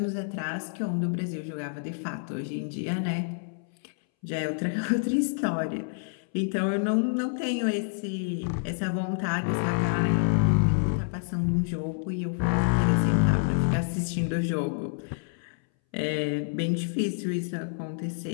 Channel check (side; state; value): right; silent; 59 dB below the other